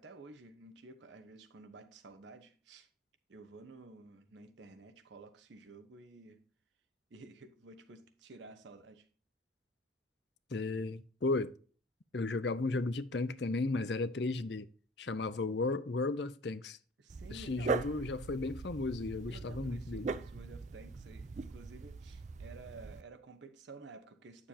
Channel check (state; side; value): normal; both; correlation 0.45